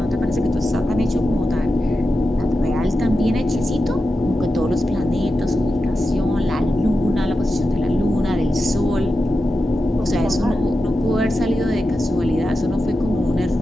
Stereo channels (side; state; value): both; normal; correlation 0.91